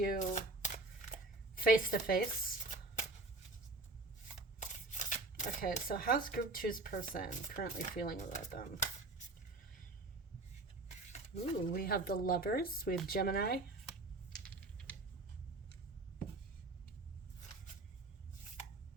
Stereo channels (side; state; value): left; quieter; 3.1 dB